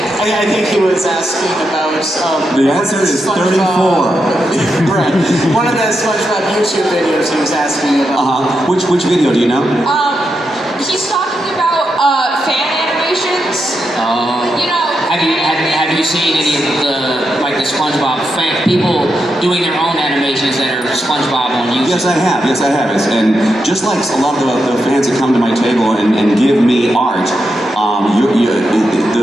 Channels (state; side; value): normal; both; correlation 0.85